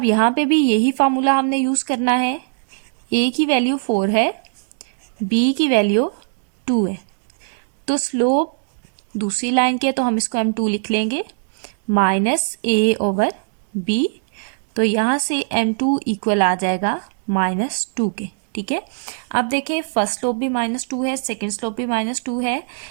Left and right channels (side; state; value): left; silent; digital silence